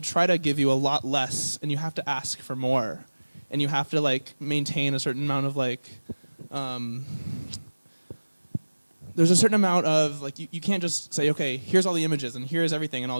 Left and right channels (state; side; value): inverted; both; correlation -1.00